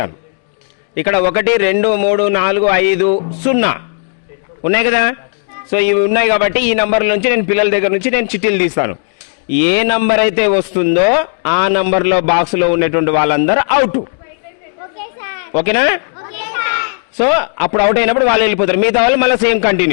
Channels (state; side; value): silent; right; digital silence